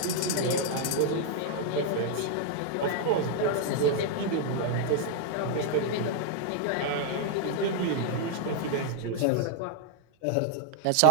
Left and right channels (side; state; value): both; different; correlation 0.00